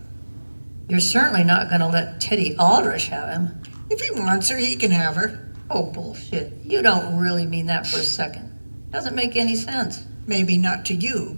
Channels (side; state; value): both; inverted; correlation -1.00